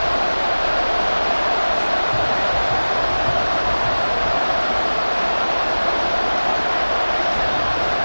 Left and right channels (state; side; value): inverted; both; correlation -1.00